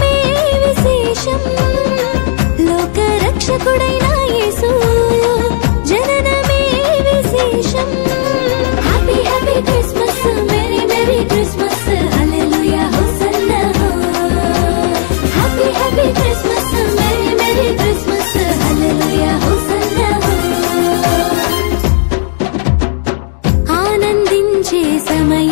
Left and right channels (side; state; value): right; silent; digital silence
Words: విశేషం లోక రక్షకుడైన యేసు జననమే విశేషం happy happy Christmas merry merry Christmas hallelujah hosanna happy happy Christmas merry merry Christmas hallelujah hosanna ఆనందించే